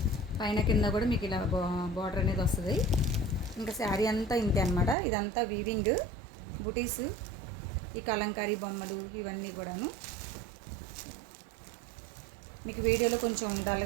పైన కింద కూడా మీకు ఇలా బార్డర్ అనేది వస్తుంది. ఇంకా శారీ అంతా ఇంతే అనమాట. ఇదంతా వీవింగ్ బుటీస్, ఈ కలంకారీ బొమ్మలు ఇవన్నీ కూడాను. మీకు వీడియోలో కొంచెం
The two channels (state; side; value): drops out; left; at 5.0 s